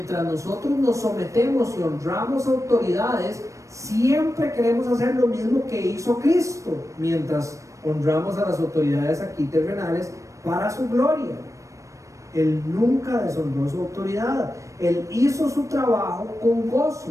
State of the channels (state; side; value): late; left; 0.15 ms